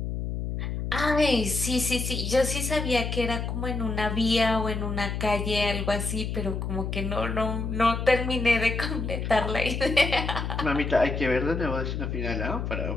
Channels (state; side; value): noise; left; hum, 3 dB below the sound